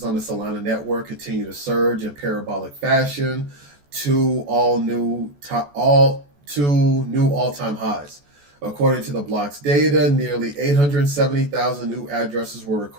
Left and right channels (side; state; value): left; late; 14 ms